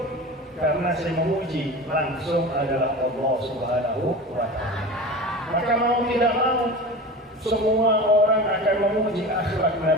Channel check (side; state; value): both; normal; correlation 0.32